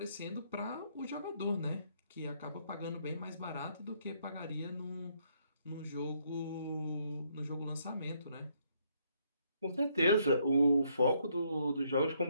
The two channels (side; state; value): both; inverted; correlation -0.71